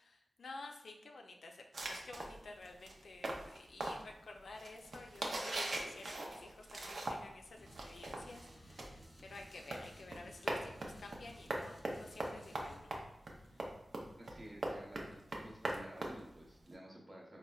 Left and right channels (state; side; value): normal; both; correlation 0.93